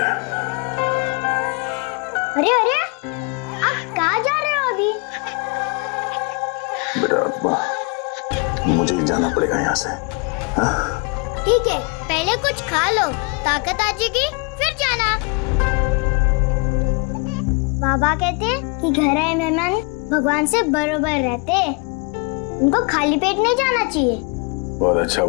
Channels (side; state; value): right; quieter; 33.0 dB